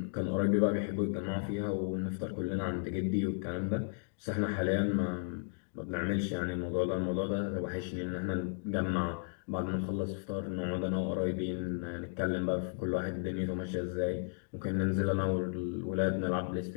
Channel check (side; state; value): right; silent; digital silence